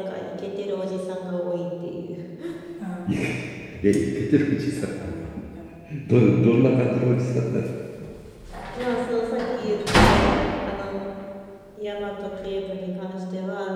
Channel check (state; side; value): identical; both; correlation 1.00